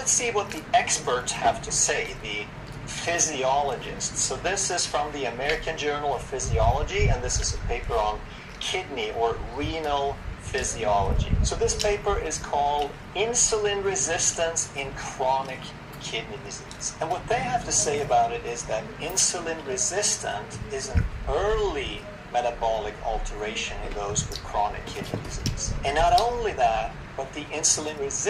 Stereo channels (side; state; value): both; identical; correlation 1.00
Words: see what the experts have to say, the physiologists. So this is from the American Journal of Physiology, and this is a paper on kidney or renal physiology. So this paper is called Insulin Resistance in Chronic Kidney Disease. And what they have to say about it is that insulin resistant is an early metabolic alteration in those with chronic kidney disease. And not only that, but the insulin